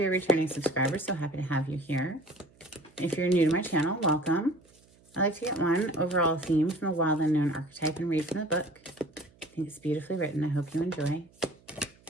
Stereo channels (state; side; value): noise; right; hum, 29 dB below the sound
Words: a returning subscriber, so happy to have you here. If you're new to my channel, welcome. I like to get one overall theme from the Wild Unknown archetype and read from the book. I think it's beautifully written. I hope you enjoy.